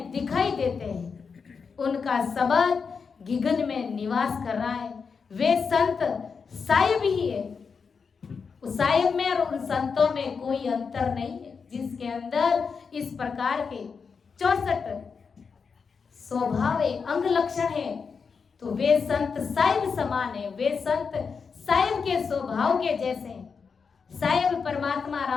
दिखाई देते हैं, उनका शब्द गिगन में निवास कर रहा है। वे संत साहिब ही है। उस साहिब में और उन संतों में कोई अंतर नहीं है, जिसके अंदर इस प्रकार के 64 स्वभाव है, अंग लक्षण है। तो वे संत साहिब समान है, वे संत साहिब के स्वभाव के जैसे हैं। साहिब परमात्मा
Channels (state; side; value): quieter; right; 5.6 dB